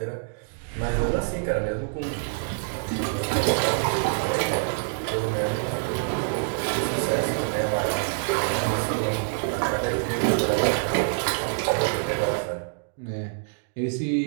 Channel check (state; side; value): silent; left; digital silence